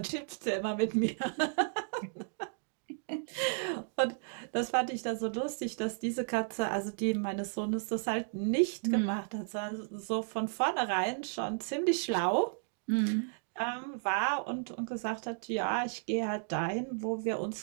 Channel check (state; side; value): silent; left; digital silence